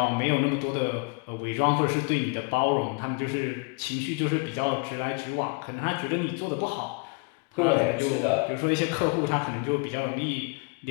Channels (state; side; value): quieter; right; 31.9 dB